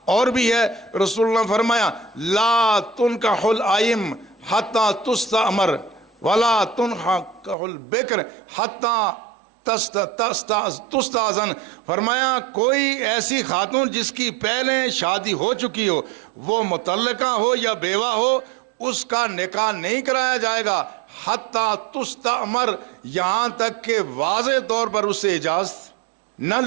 اور بھی ہے۔ رسول اللہ نے فرمایا لا تنکح الائم حتی تستأمر ولا تنکح البکر حتی تستأذن، فرمایا کوئی ایسی خاتون جس کی پہلے شادی ہو چکی ہو، وہ مطلقہ ہو یا بیوہ ہو، اس کا نکاح نہیں کرایا جائے گا حتی تستأمر، یہاں تک کہ واضح طور پر اس سے اجازت نہ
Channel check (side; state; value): left; drops out; at 7.6 s